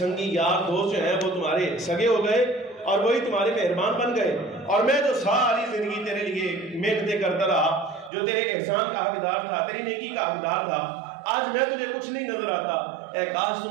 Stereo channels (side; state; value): left; drops out; at 8.1 s